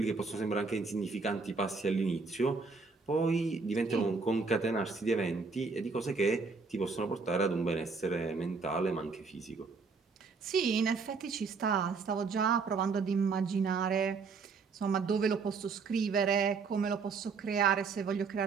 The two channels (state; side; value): quieter; left; 4.7 dB